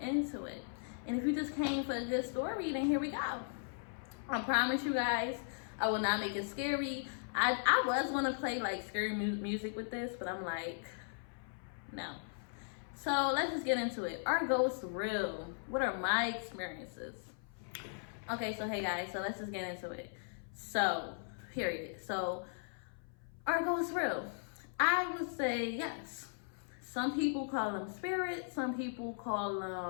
into it. And if you just came for a good story, then here we go. I promise you guys, I will not make it scary. I was going to play like scary music with this, but I'm like, no. So let's just get into it. Are ghosts real? What are my experiences? Okay, so hey guys, so let's just get into it. So, period. So, are ghosts real? I would say yes. Some people call them spirits. Some people call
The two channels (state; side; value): silent; right; 53 dB below the other